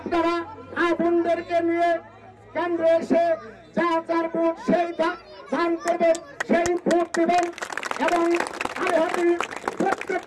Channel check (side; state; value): both; identical; correlation 1.00